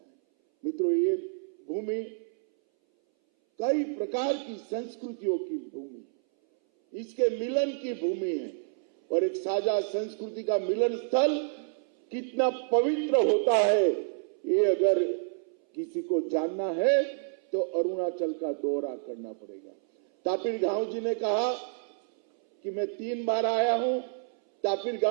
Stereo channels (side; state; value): left; silent; 59 dB below the other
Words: मित्रों, ये भूमि कई प्रकार की संस्कृतियों की भूमि है, इसके मिलन की भूमि है और एक साझा संस्कृति का मिलन स्थल कितना पवित्र होता है, ये अगर किसी को जानना है तो अरुणाचल का दौरा करना पड़ेगा। तापिर गांव जी ने कहा कि मैं 3 बार आया हूं। तापिर